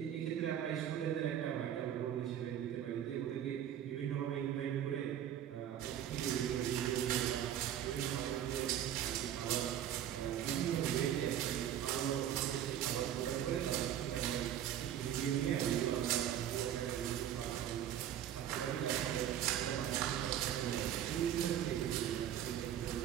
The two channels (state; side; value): quieter; left; 10.6 dB